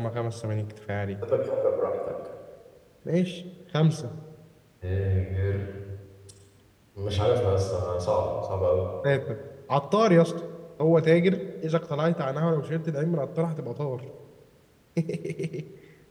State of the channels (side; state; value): both; identical; correlation 1.00